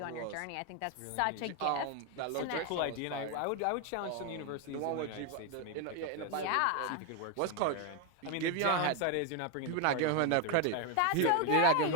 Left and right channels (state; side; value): different; both; correlation 0.01